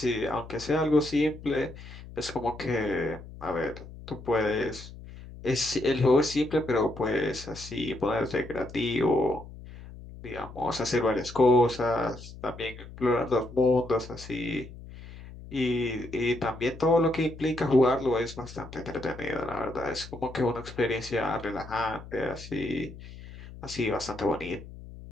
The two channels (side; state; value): left; noise; hum, 15 dB below the sound